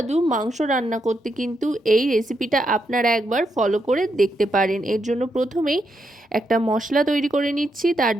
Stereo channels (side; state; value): both; normal; correlation 0.81